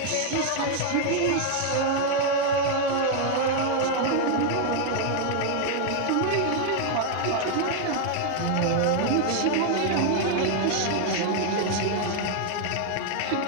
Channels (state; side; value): different; both; correlation 0.00